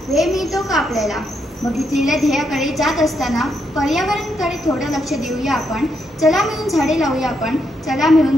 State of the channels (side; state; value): both; normal; correlation 0.79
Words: वेळ मिळतो का आपल्याला? बघितलेल्या ध्येयाकडे जात असताना पर्यावरणाकडे थोडं लक्ष देऊया आपण. चला मिळून झाडे लावूया आपण, चला मिळून